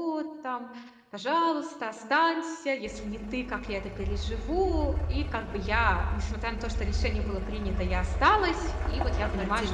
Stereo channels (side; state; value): both; identical; correlation 1.00